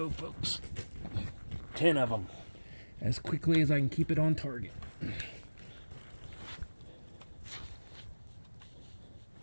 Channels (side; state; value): both; inverted; correlation -1.00